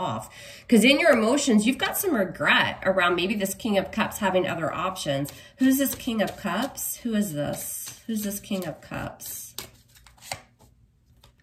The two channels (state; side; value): identical; both; correlation 1.00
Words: Because in your emotions, you've got some regret around maybe this King of Cups having other options. Who's this King of Cups? Who is this? Who's this King of Cups?